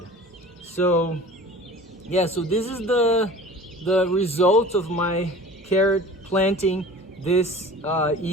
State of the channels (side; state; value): both; normal; correlation 0.41